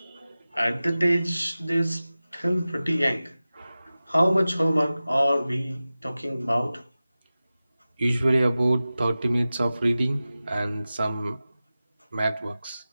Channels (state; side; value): inverted; both; correlation -0.96